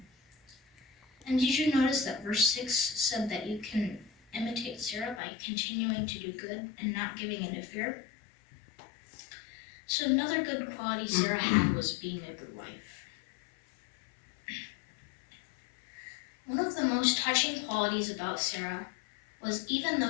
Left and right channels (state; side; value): drops out; right; at 5.2 s